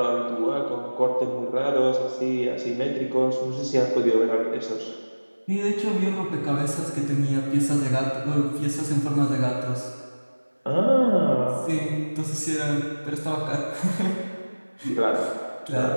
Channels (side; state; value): both; inverted; correlation -1.00